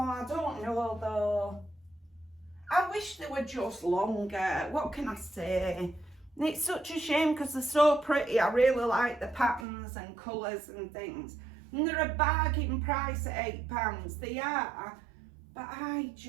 don't know though. I wish they were just longer. What can I say? And it's such a shame because they're so pretty. I really like the patterns and colours and things. And they're a bargain price at £8. They are. But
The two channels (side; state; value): left; drops out; at 9.7 s